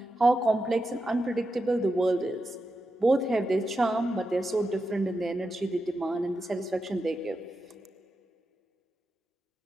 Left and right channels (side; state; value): both; normal; correlation 0.88